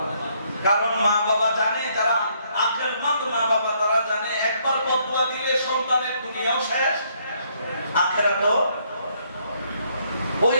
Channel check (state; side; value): inverted; both; correlation -0.70